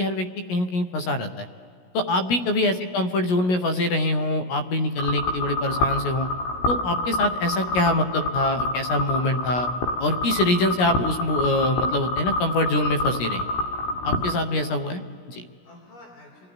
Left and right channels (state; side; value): late; right; 17 ms